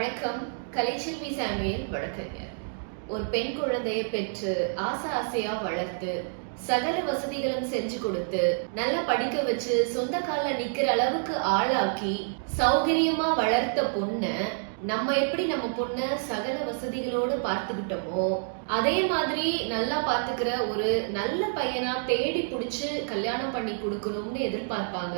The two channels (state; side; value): silent; left; digital silence